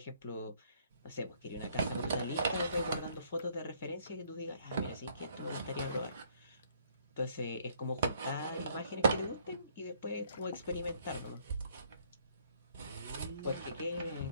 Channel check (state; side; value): inverted; both; correlation -0.65